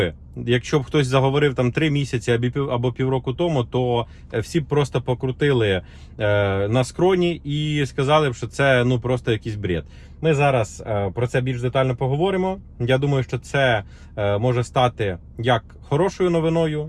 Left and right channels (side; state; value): both; identical; correlation 1.00